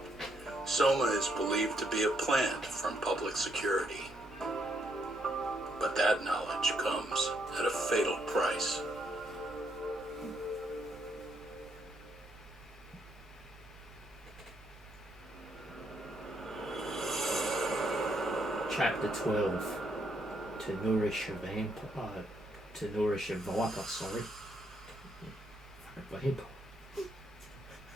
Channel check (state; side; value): normal; both; correlation 0.75